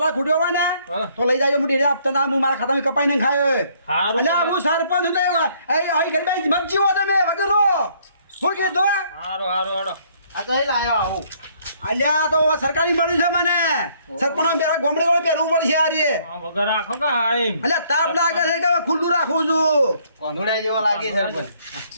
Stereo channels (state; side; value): inverted; both; correlation -0.65